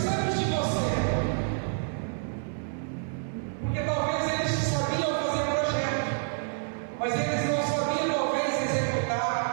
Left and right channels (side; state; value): left; silent; 59 dB below the other